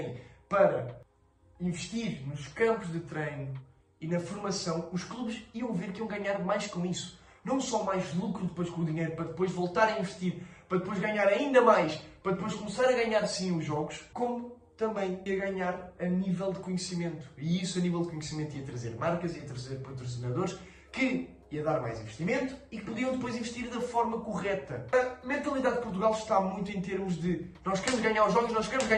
para investir nos campos de treino e na formação, os clubes iam ver que iam ganhar mais com isso. Não só mais lucro depois com o dinheiro, para depois voltar a investir, para depois ganhar ainda mais, para depois começar a ganhar sim os jogos, como também ia ganhar a nível de conhecimento. E isso a nível de conhecimento ia trazer marcas, ia trazer patrocinadores, que ia dar mais investimento e que podiam depois investir da forma correta. A mentalidade de Portugal está muito em termos de nós queremos ganhar os jogos, nós queremos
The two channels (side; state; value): both; identical; correlation 1.00